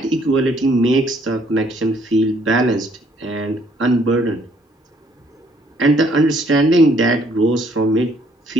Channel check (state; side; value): normal; both; correlation 0.65